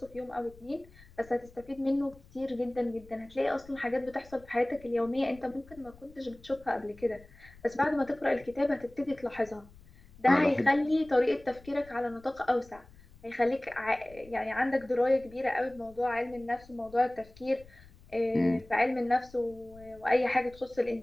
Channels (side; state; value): left; noise; rumble, 23 dB below the sound